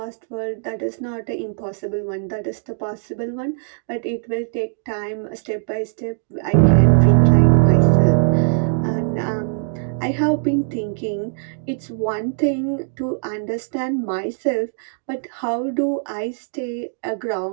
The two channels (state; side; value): silent; left; digital silence